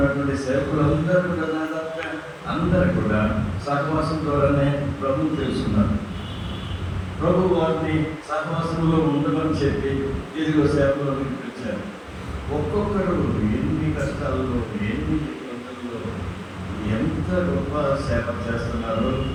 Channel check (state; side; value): identical; both; correlation 1.00